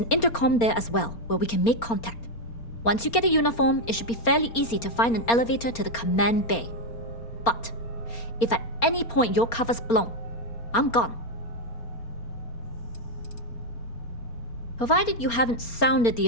intercom there as well, where we can make contact. Once you get a uniform, it should be fairly easy to find an elevator to the command bay. But if at any point your cover's blown, I'm gone. Provided you haven't sounded the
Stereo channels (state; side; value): late; right; 4.3 ms